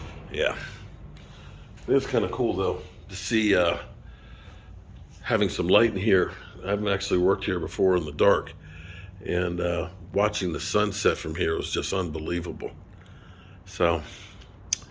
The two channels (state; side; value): identical; both; correlation 1.00